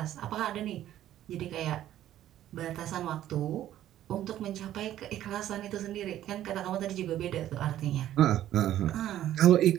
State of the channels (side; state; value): left; quieter; 12.5 dB